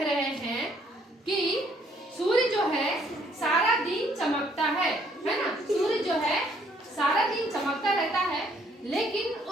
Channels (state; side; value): normal; both; correlation 0.65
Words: रहे हैं कि सूर्य जो है सारा दिन चमकता है ना। सूर्य जो है सारा दिन चमकता रहता है, लेकिन